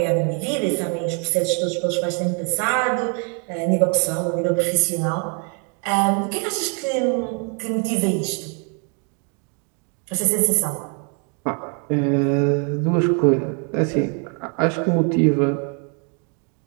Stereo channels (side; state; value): left; quieter; 38.1 dB